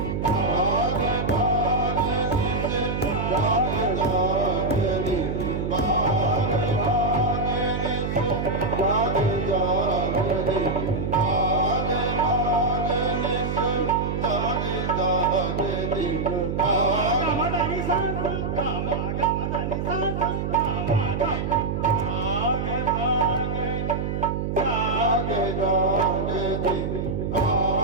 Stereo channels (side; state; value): right; noise; hum, 2 dB below the sound